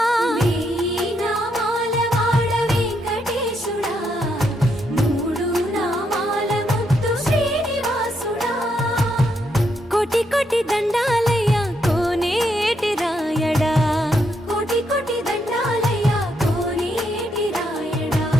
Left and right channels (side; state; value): both; normal; correlation 0.77